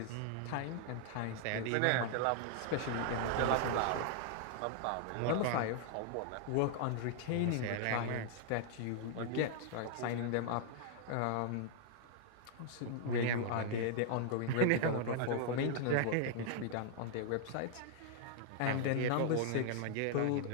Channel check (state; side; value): different; both; correlation 0.00